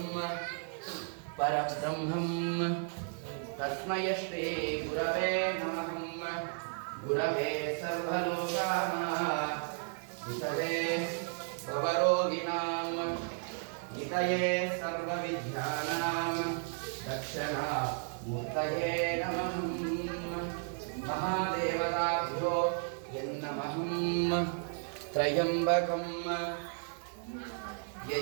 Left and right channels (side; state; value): left; silent; 55 dB below the other